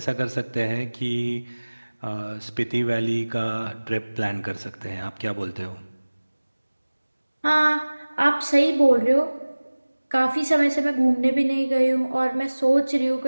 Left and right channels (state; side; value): inverted; both; correlation -1.00